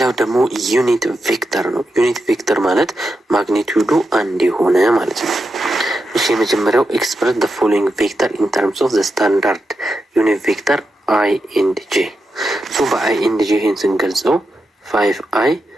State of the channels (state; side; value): normal; both; correlation 0.87